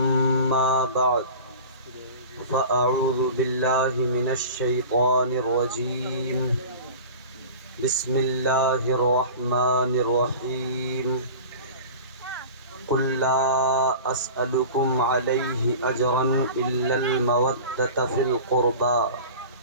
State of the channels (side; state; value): both; inverted; correlation -0.36